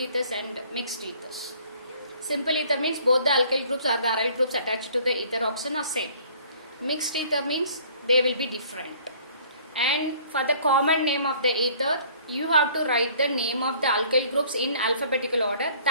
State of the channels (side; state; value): both; inverted; correlation -0.55